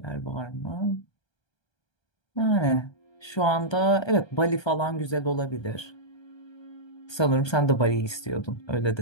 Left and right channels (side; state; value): right; late; 1.3 ms